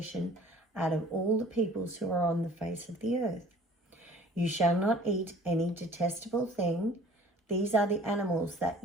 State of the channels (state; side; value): normal; both; correlation 0.50